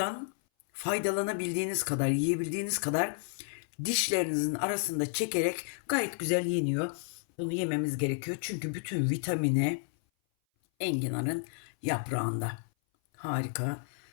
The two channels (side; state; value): right; silent; 57 dB below the other